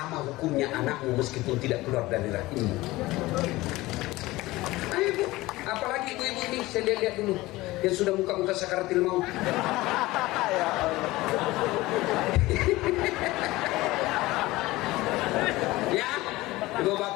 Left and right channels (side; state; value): right; quieter; 19.2 dB